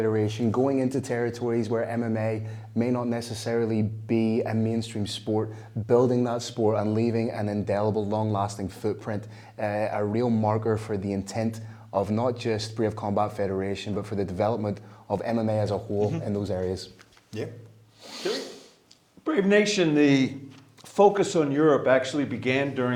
going into territories where MMA may not necessarily be a mainstream sport, building that sport and leaving an indelible, long-lasting footprint, a real marker for the intent of not just Brave Combat Federation, but for the development of MMA as a whole in those areas. Yeah. Brave Nation, the focus on Europe actually began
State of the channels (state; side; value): identical; both; correlation 1.00